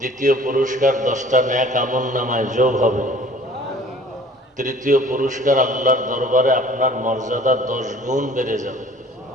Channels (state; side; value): normal; both; correlation 0.50